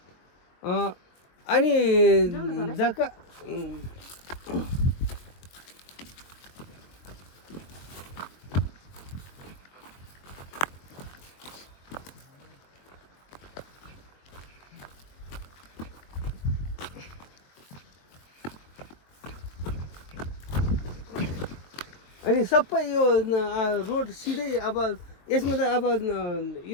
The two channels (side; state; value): right; late; 22 ms